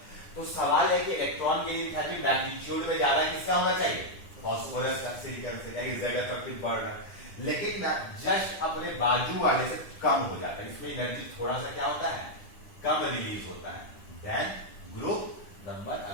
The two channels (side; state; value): right; late; 9.9 ms